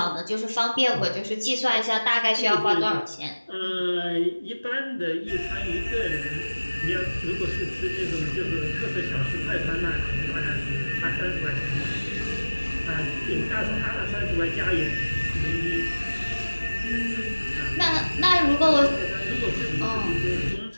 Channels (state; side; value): inverted; both; correlation -1.00